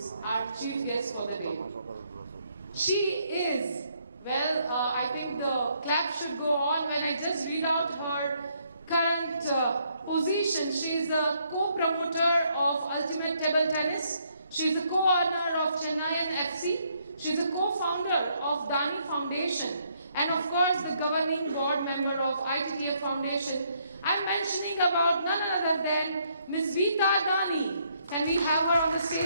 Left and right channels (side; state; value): both; inverted; correlation -0.71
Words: our chief guest for the day. She is, well, I think the clap should go on when I just read out her current position. She is a co-promoter of Ultimate Table Tennis. She is a co-owner of Chennaiyin FC. She is a co-founder of Dani Foundation. And of course, the governing board member of ITTF Foundation. I'm mentioning about none other than Ms. Veeta Dani. Can we have her on the